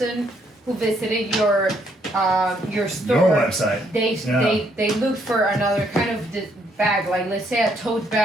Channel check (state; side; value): normal; both; correlation 0.71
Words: who visited your store, your website, they looked for another kind of bag, like let's say a tote